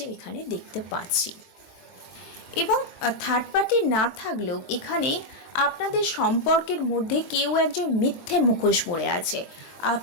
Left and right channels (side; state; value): right; late; 23 ms